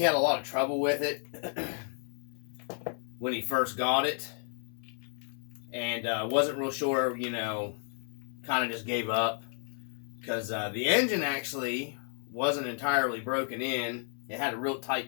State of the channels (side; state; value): right; silent; 55 dB below the other